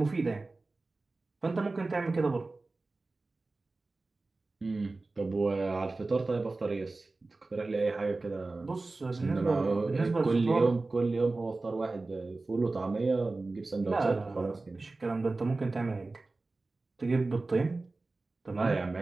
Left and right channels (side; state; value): left; quieter; 3.4 dB